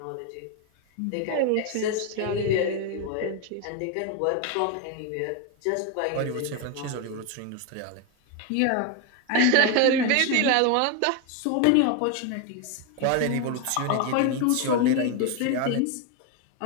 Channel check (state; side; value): different; both; correlation 0.01